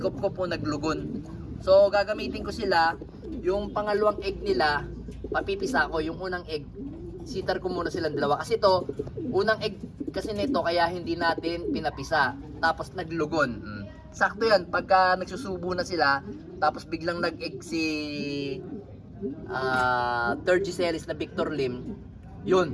po naglugon. So gagamitin ko sila. Yung pangalawang egg nila, papipisa ko. Yung unang egg, sitar ko muna silang dalawa. Kasi to, unang egg kasi nito kaya hindi natin pinapisa. Tapos naglugon. Sakto yan. Pagka nagsusubo na sila, tapos biglang nag-egg si third G series na Victor Lim,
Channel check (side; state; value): both; identical; correlation 1.00